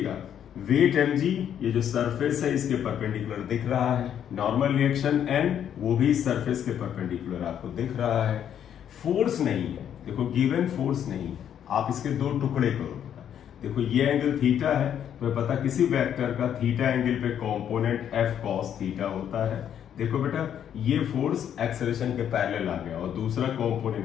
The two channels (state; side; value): quieter; right; 9.4 dB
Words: वेट mg, ये जो सरफेस है इसके परपेंडिकुलर दिख रहा है, नॉर्मल रिएक्शन n वो भी इस सरफेस के परपेंडिकुलर आपको दिख रहा है। फोर्स नहीं है, देखो गिवन फोर्स नहीं है, आप इसके दो टुकड़े करो। देखो ये एंगल थीटा है, तो पता किसी वेक्टर का थीटा एंगल पे कंपोनेंट f cos थीटा होता है। देखो बेटा, ये फोर्स एक्सेलरेशन के पैरेलल आ गया, और दूसरा